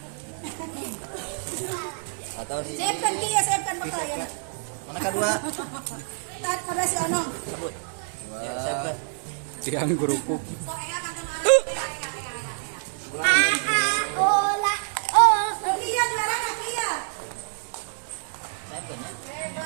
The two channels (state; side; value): silent; left; digital silence